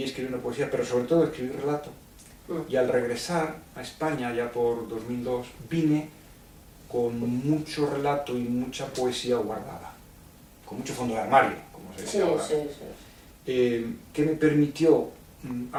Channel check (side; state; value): both; identical; correlation 1.00